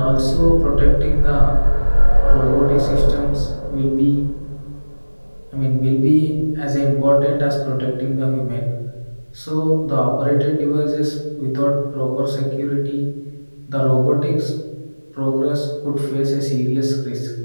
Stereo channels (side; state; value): both; inverted; correlation -1.00